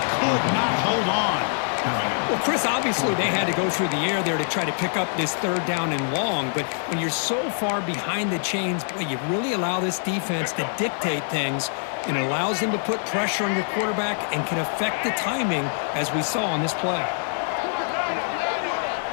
could not hold on. Well, Chris, obviously they had to go through the air there to try to pick up this third down and long, but when you're so far behind the chains, boy, you really allow this defense to dictate things, and it allows them to put pressure on your quarterback and can affect the timing, as we saw on this play.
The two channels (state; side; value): silent; right; digital silence